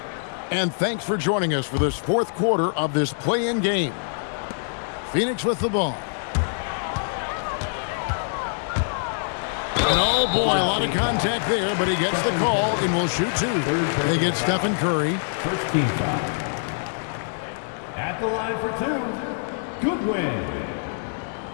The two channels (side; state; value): right; silent; digital silence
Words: And thanks for joining us for this fourth quarter of this play-in game. Phoenix with the ball. And oh boy, a lot of contact there, but he gets the call and will shoot two. They get Stephen Curry. First team foul. At the line for two, Goodwin.